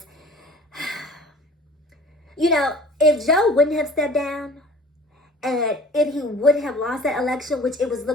you know, if Joe wouldn't have stepped down and if he would have lost that election, which it was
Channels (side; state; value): both; normal; correlation 0.46